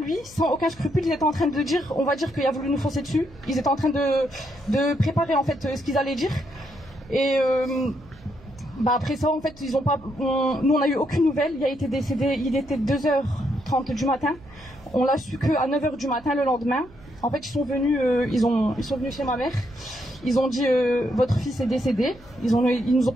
sans aucun scrupule, ils étaient en train de dire, on va dire qu'il a voulu nous foncer dessus. Ils étaient en train de préparer en fait ce qu'ils allaient dire. Et après ça, en fait, nous on a eu aucune nouvelle. Il a été décédé, il était 2h30 du matin. On l'a su qu'à 9h du matin le lendemain. En fait, ils sont venus chez ma mère. Ils ont dit votre fils est décédé. Ils nous ont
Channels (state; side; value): noise; right; hum, 23 dB below the sound